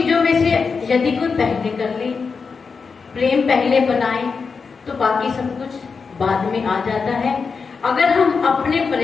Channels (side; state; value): right; quieter; 5.1 dB